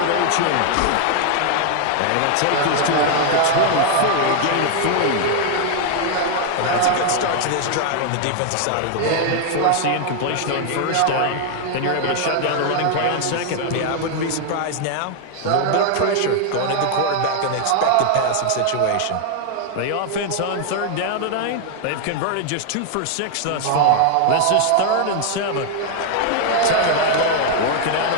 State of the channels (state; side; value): different; both; correlation 0.00